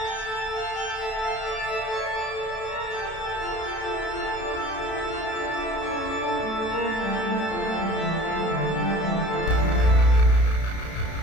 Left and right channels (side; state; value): right; late; 32 ms